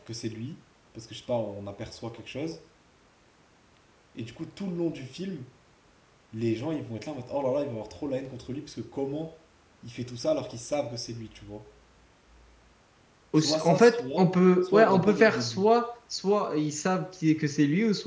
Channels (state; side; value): identical; both; correlation 1.00